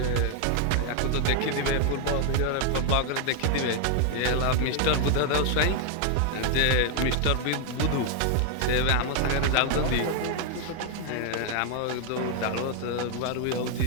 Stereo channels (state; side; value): different; both; correlation 0.00